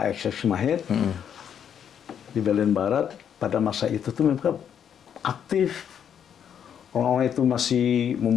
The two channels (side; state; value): right; quieter; 8.6 dB